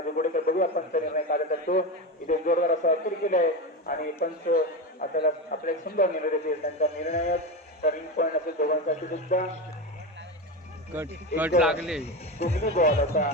जोगणेकर. बघूया पंच निर्णय काय देतात तो. इथे जोरदार असं अपील केलंय आणि पंच आपल्याला आपल्या सुंदर निर्णय देतील. त्यांचा निर्णय टर्निंग पॉईंट असेल दोघांसाठी सुद्धा. कट लागले बॉल होता.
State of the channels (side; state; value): both; normal; correlation 0.18